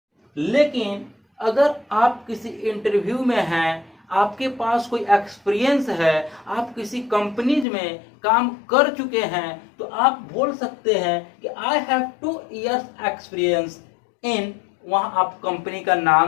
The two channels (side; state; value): right; drops out; at 7.7 s